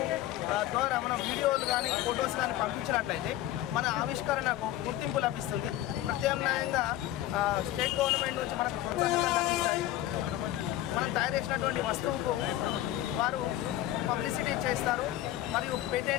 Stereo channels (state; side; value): quieter; right; 13.9 dB